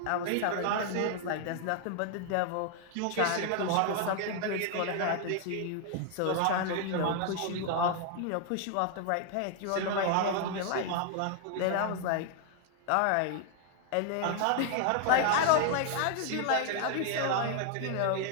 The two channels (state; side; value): different; both; correlation 0.00